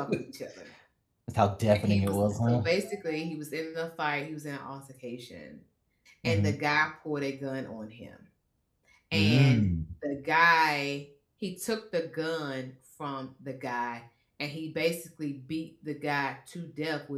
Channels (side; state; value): both; identical; correlation 1.00